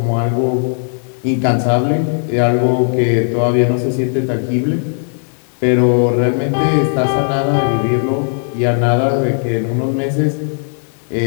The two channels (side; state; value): right; silent; digital silence